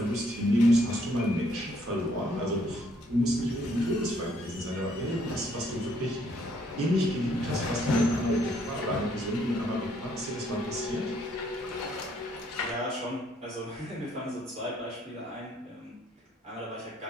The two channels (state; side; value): normal; both; correlation 0.67